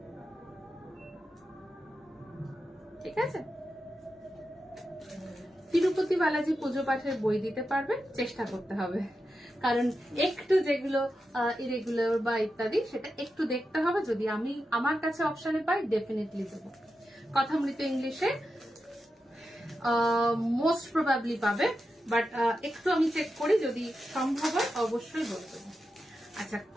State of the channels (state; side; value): normal; both; correlation 0.89